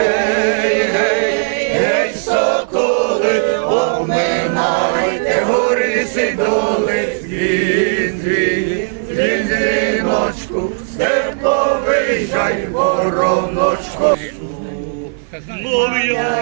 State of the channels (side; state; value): left; silent; 56 dB below the other